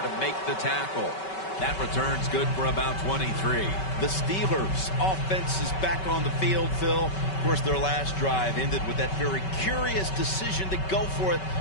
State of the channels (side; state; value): right; late; 5.3 ms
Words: to make the tackle. That return's good for about 23. The Steelers' offense is back on the field, Phil. Of course, their last drive ended with that very curious decision to go for it